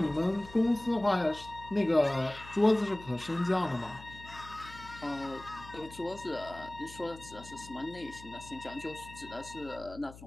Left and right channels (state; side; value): noise; left; hum, 17 dB below the sound